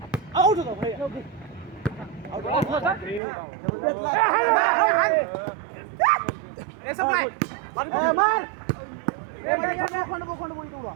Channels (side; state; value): left; drops out; at 3.2 s